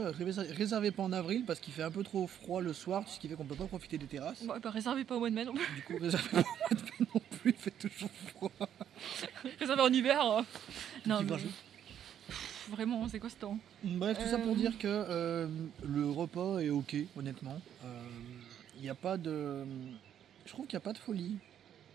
pas en avril parce qu'il fait un peu trop froid le soir, ce qui fait qu'on peut pas profiter des terrasses. Bon, bah réservez pas au mois de mai non plus. Du coup, réservez pas au mois de mai non plus, il fait toujours froid. Réservez en hiver. Non, Petit mais... grageau. Vraiment, c'est quoi ce temps? Bref, tout ça pour dire que le repas est ok, honnêtement. Il n'y a pas de... Je trouve qu'il n'y a pas de folie.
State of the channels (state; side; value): quieter; left; 9.7 dB